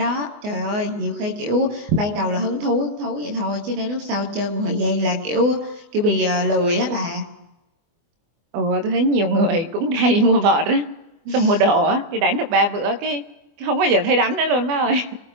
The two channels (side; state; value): left; late; 24 ms